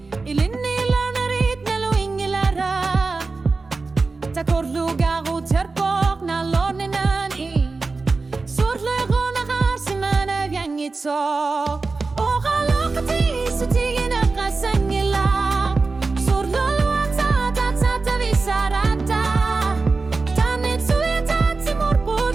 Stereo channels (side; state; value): left; quieter; 3.9 dB